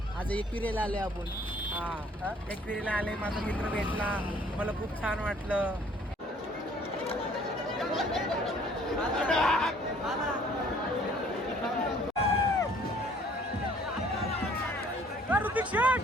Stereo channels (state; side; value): normal; both; correlation 0.57